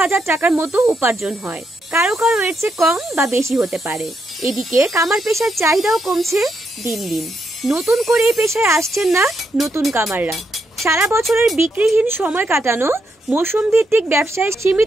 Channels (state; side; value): normal; both; correlation 0.80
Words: হাজার টাকার মতো উপার্জন হয়। কারো কারো এর চেয়ে কম বা বেশি হতে পারে। এদিকে কামার পেশার চাহিদাও কমছে দিন দিন। নতুন করে এই পেশায় আসছেন না নতুন কামাররা। সারা বছরের বিক্রিহীন সময় কাটানো, মৌসুম ভিত্তিক ব্যবসায়